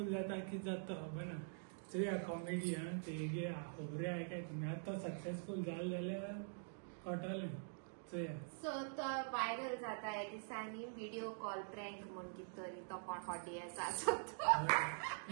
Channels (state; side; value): silent; left; digital silence